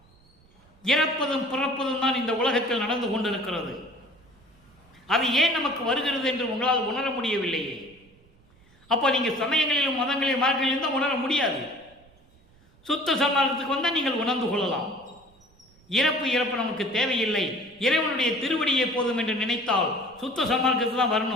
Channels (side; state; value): right; noise; rumble, 30 dB below the sound